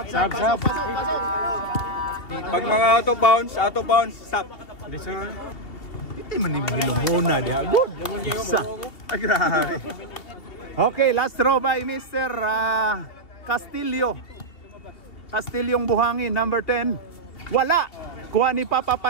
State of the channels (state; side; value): late; right; 2.7 ms